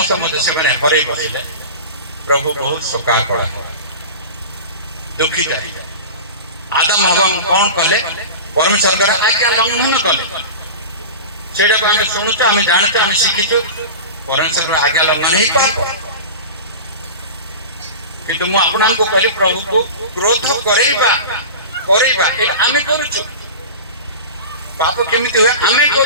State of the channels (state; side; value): inverted; both; correlation -0.30